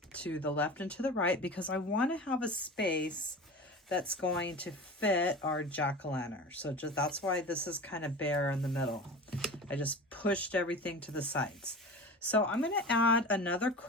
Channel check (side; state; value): both; normal; correlation 0.33